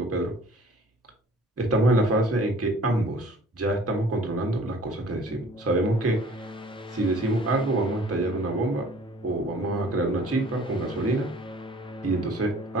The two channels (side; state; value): both; normal; correlation 0.51